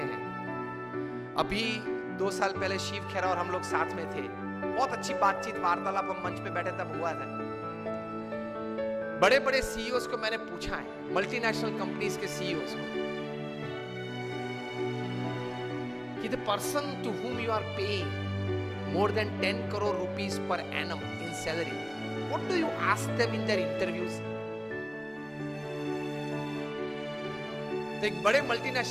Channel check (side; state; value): both; identical; correlation 1.00